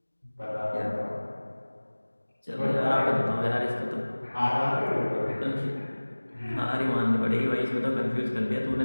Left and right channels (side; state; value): both; inverted; correlation -1.00